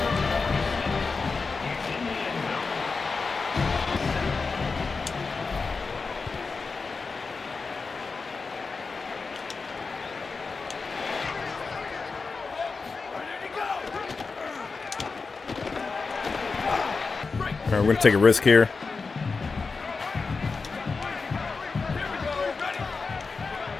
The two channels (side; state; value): right; quieter; 4.5 dB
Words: All right, we're going to take a risk here.